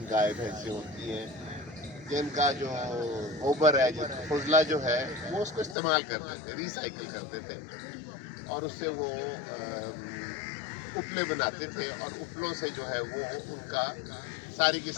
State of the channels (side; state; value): right; drops out; at 5.8 s